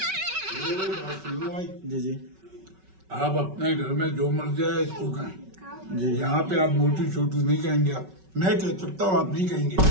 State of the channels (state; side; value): late; left; 5.3 ms